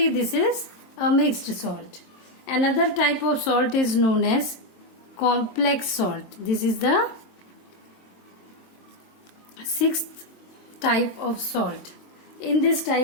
this is a mixed salt. Another type of salt is known as complex salt. This is the sixth type of salt. In this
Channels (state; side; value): late; right; 22 ms